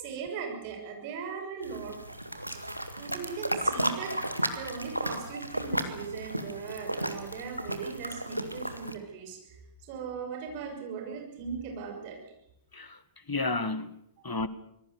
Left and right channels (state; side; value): inverted; both; correlation -0.61